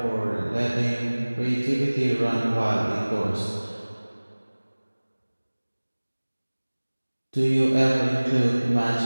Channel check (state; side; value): inverted; both; correlation -1.00